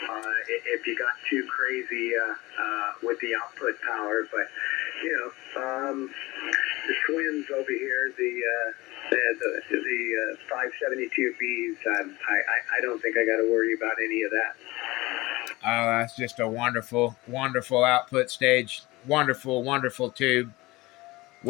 if you got too crazy with the output power. But the twins over here, the 572Bs, I don't think I got to worry about any of that. Oh, that's just a wonderful output stage. Wonderful tube.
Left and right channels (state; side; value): quieter; right; 20.9 dB